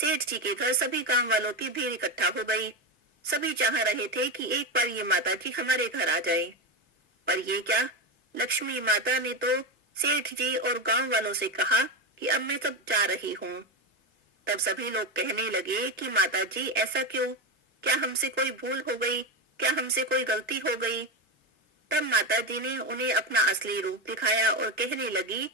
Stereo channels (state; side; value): normal; both; correlation 0.15